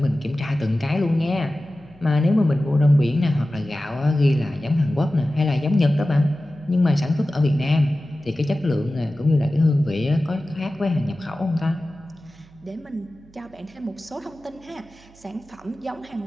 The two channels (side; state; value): right; noise; hum, 27 dB below the sound